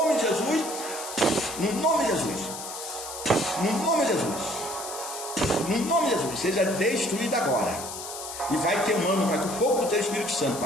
de Jesus, no nome de Jesus, no nome de Jesus, no nome de Jesus, seja destruída agora. E vai queimando, Pai, com o fogo do teu Espírito Santo,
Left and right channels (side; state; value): left; noise; hiss, 9 dB below the sound